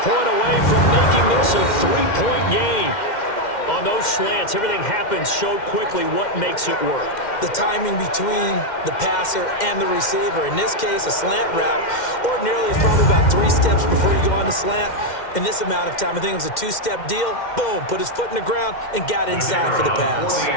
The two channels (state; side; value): late; right; 2.1 ms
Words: away from making this a 3-point game. On those slants, everything happens so quickly. What makes it work? The timing between the passer and the receiver. In this case, a slant route ordinarily is probably about 3 steps before you go on the slant. In this amount of time, I think it was a 2-step deal. Boom, put his foot in the ground and got inside for the pass.